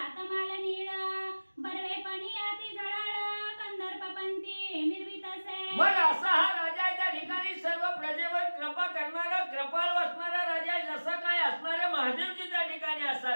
तमाल नीळ बरवेपणी अति जळाळ कंदर्पपंती मिरवितसे. मग असा हा राजा आहे त्या ठिकाणी सर्व प्रजेवर कृपा करणारा कृपाळ असणारा राजा आहे. जसा काय असणारे महादेवजी त्या ठिकाणी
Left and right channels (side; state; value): both; inverted; correlation -1.00